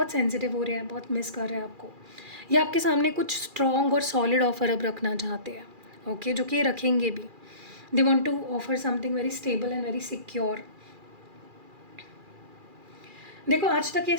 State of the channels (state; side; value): late; left; 2.4 ms